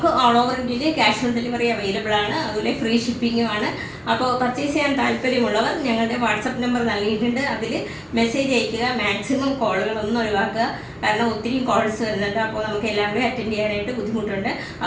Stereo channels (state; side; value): identical; both; correlation 1.00